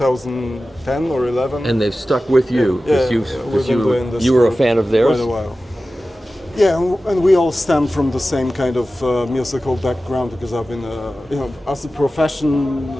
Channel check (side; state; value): both; normal; correlation 0.95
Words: or 11. And they've stuck with you because you were a fan of theirs. Quite a while. Yeah, and we all stem from the same kind of musical background because I've been, as a profession,